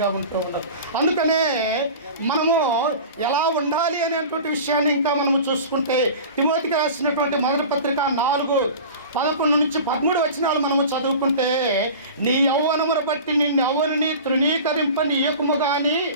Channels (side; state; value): both; inverted; correlation -0.37